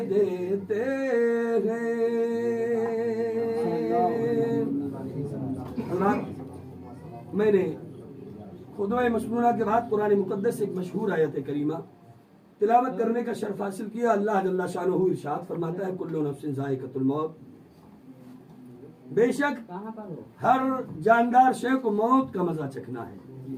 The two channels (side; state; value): both; identical; correlation 1.00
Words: دیتے ہیں۔ میں نے خطبہ مسنونہ کے بعد قرآن مقدس سے ایک مشہور آیت کریمہ تلاوت کرنے کا شرف حاصل کیا۔ اللہ جل شانہ ارشاد فرماتا ہے کل نفس ذائقۃ الموت، بے شک ہر جاندار شے کو موت کا مزہ چکھنا ہے۔